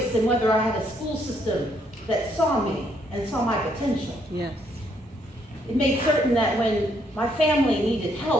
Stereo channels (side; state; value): both; normal; correlation 0.71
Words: in whether I had a school system that saw me and saw my potential. Yes. It made certain that when my family needed